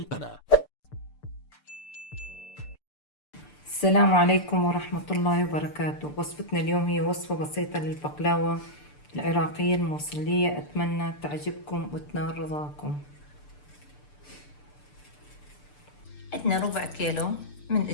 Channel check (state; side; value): late; right; 6.8 ms